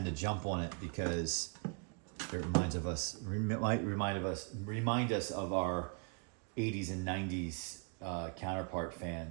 to jump on it because it remind us of our 80s and 90s counterpart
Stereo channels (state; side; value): quieter; left; 38.2 dB